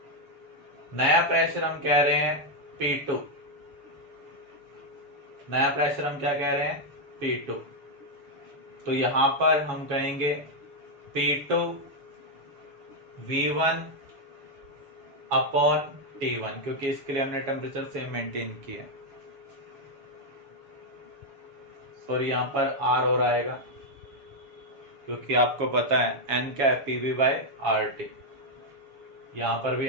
नया प्रेशर हम कह रहे हैं P2। नया प्रेशर हम क्या कह रहे हैं, P2। तो यहां पर हम कहेंगे P2 V1 अपॉन T1, क्योंकि इसके लिए हमने टेम्परेचर सेम मेंटेन किया है। और यहां पर R और आएगा क्योंकि आपको पता है n क्या है, PV बाय RT। यहां पर भी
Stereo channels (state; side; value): late; left; 7.2 ms